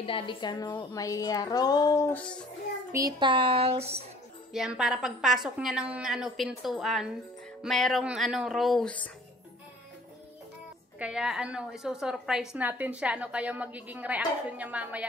Daddy Kano. May rose, petals. Yan, para pagpasok niya ng pintuan, mayroong rose. Kaya isusurprise natin siya. Kaya magiging reaction niya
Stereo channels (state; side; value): normal; both; correlation 0.52